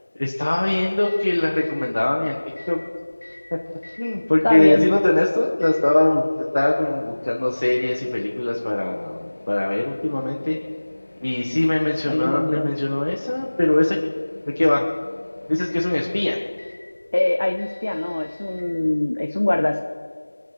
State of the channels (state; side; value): inverted; both; correlation -1.00